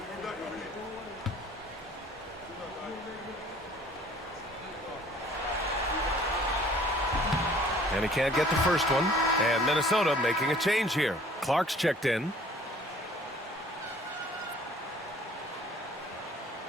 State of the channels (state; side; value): normal; both; correlation 0.53